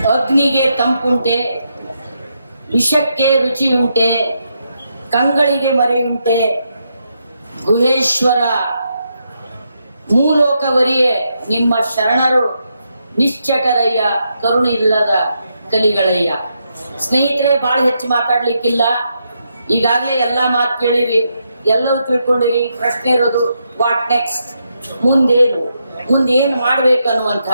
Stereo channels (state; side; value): inverted; both; correlation -0.81